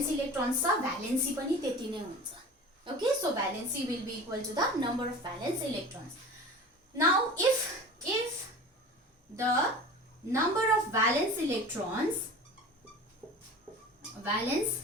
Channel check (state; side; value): normal; both; correlation 0.37